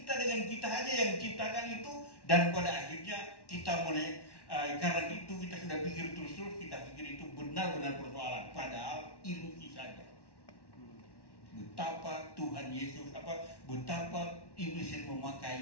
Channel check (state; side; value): late; right; 1.1 ms